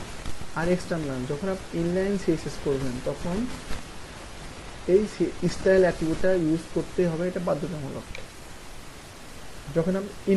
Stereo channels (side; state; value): both; identical; correlation 1.00